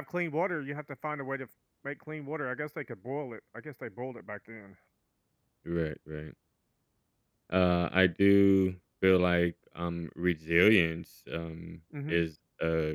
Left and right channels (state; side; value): identical; both; correlation 1.00